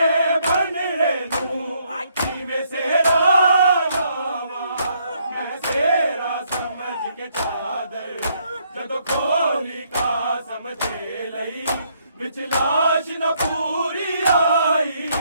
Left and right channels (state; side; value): inverted; both; correlation -0.71